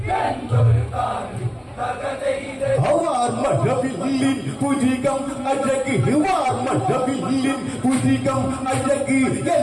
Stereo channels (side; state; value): both; identical; correlation 1.00